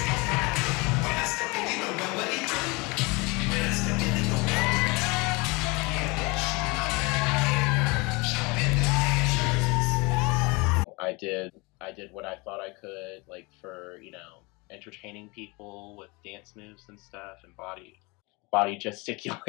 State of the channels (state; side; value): quieter; right; 26.7 dB